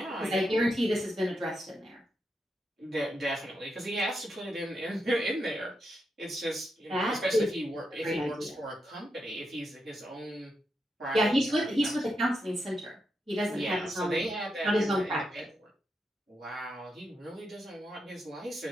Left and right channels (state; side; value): normal; both; correlation 0.85